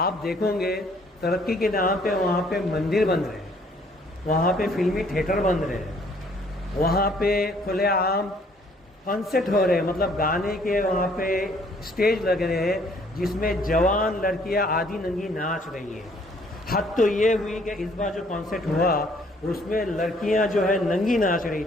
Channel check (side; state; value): both; normal; correlation 0.62